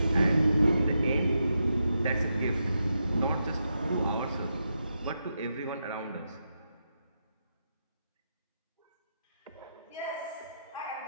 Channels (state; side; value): inverted; both; correlation -0.85